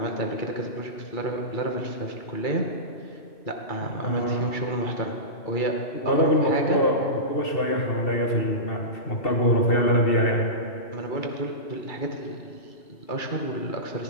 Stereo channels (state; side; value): late; right; 2.7 ms